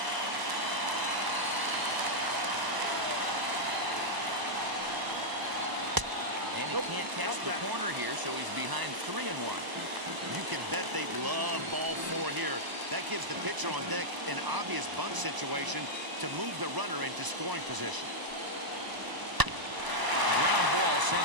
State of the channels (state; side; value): late; left; 1.0 ms